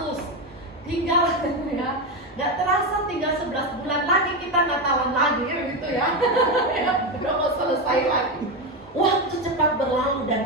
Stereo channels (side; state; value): both; normal; correlation 0.12